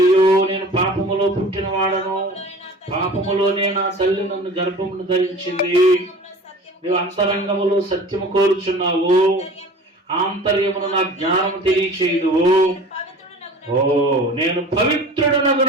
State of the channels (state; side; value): normal; both; correlation 0.41